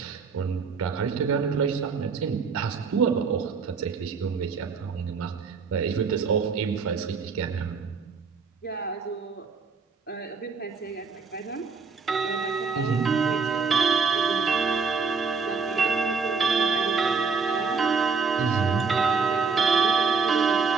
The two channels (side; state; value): left; quieter; 5.1 dB